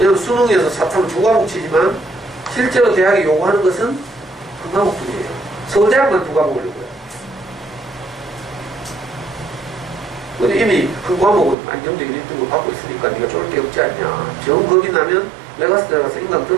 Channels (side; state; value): left; drops out; at 11.6 s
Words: 수능에서 사탐 2과목 치지만 실제로 대학이 요구하는 것은 한 과목뿐이에요. 서울대학만 2과목을 요구해요. 근데 이미 그 과목은 안정적인 1등급 받고 있으니까 네가 쫄을 게 없지 않냐. 정 겁이 나면 메가스 들어가서 인강